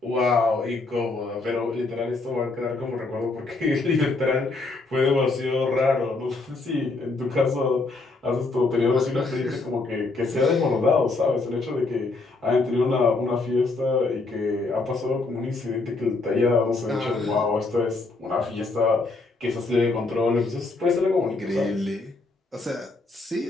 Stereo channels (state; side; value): quieter; right; 3.5 dB